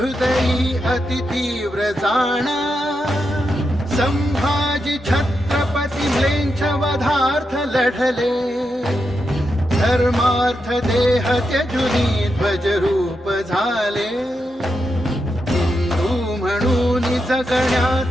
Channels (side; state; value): both; normal; correlation 0.86